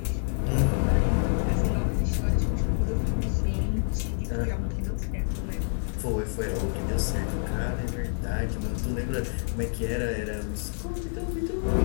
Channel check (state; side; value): silent; right; 60 dB below the other